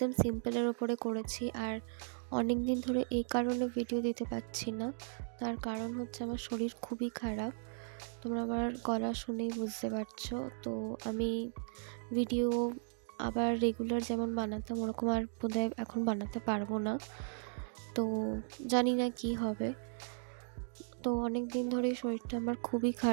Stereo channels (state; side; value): silent; left; 53 dB below the other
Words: সিম্পলের ওপরে করেছি। আর অনেক দিন ধরে এই কারণে ভিডিও দিতে পারছি না, তার কারণ হচ্ছে আমার শরীর খুবই খারাপ। তোমরা আমার গলা শুনেই বুঝতে পারছো। তো আমি ভিডিও আবার রেগুলার যেমন বানাতাম ওরকম আর বোধহয় এখন বানাতে পারবো না। তো জানি না কি হবে। তো অনেক দিন ধরে শরীরটা আমার খুবই